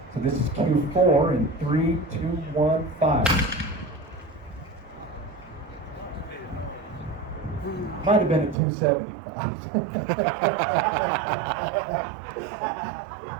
So this is Q4 in 3, 2, 1, fire. Might have been a 275.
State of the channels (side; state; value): left; drops out; at 8.6 s